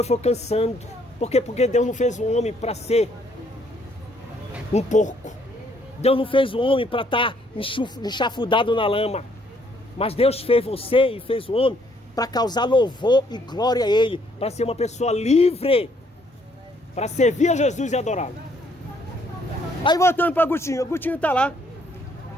foi cansando. Por quê? Porque Deus não fez o homem para ser um porco. Deus não fez o homem para estar enxafudado na lama. Mas Deus fez você e fez o homem para causar louvor e glória a Ele, para ser uma pessoa livre, para servir a Jesus e adorá-lo. Aí voltando para Agostinho, Agostinho está lá,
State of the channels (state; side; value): normal; both; correlation 0.67